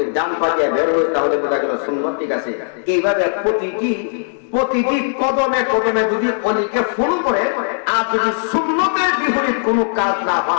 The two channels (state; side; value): silent; right; digital silence